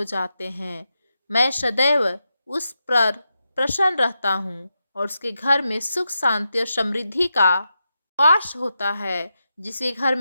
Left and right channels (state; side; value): inverted; both; correlation -0.87